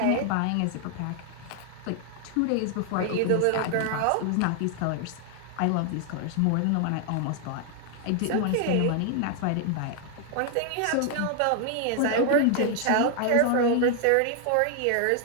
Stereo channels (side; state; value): both; different; correlation 0.00